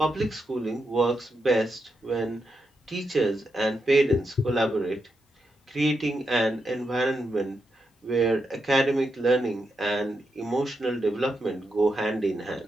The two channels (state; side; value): normal; both; correlation 0.84